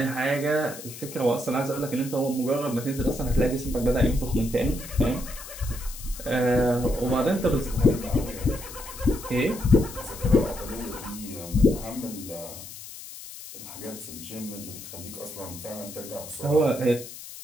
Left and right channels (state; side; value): noise; left; hiss, 13 dB below the sound